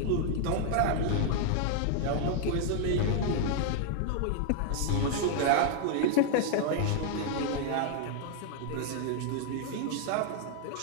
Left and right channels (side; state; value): both; different; correlation 0.00